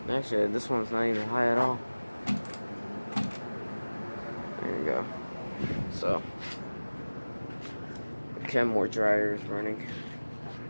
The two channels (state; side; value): inverted; both; correlation -1.00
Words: Actually, this one's not even high at all. There you go. So Kenmore dryer is running.